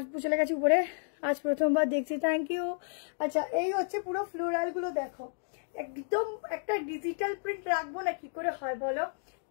চলে গেছি উপরে, আজ প্রথমবার দেখছি, থ্যাংক ইউ। আচ্ছা, এই হচ্ছে পুরো ফ্লোরাল গুলো দেখো, একদম একটা ডিজিটাল প্রিন্ট রাখবো না কি করে হয় বলো,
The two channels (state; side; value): silent; right; digital silence